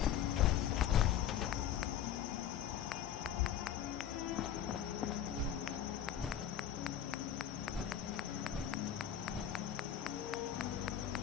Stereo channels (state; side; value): quieter; right; 9.8 dB